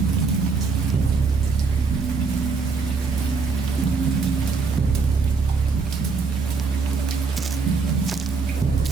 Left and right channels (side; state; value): left; quieter; 4.7 dB